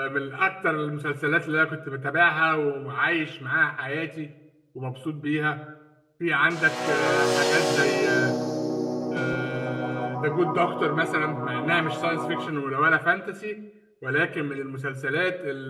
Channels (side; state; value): both; identical; correlation 1.00